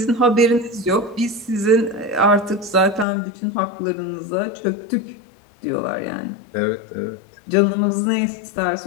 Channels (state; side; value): drops out; right; at 3.1 s